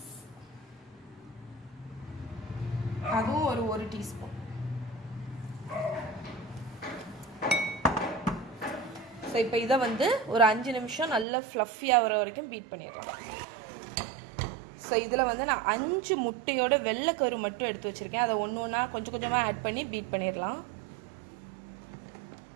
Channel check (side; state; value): left; drops out; at 11.2 s